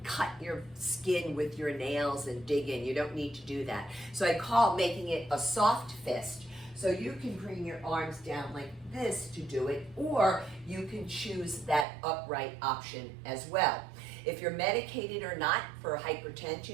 cut your skin with your nails and dig in. You don't need to do that. So I call making it a soft fist. So you can bring your arms down like this to do it, or you can choose that upright option as well. If you're medicated or not for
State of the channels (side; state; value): left; drops out; at 11.9 s